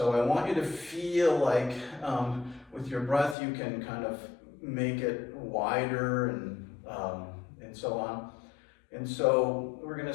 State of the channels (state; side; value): drops out; right; at 3.4 s